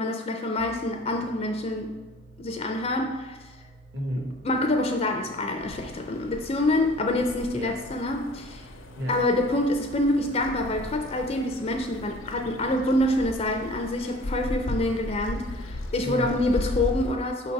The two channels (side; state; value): both; normal; correlation 0.48